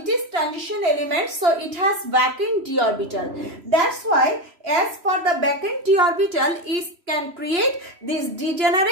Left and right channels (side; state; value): left; late; 3.0 ms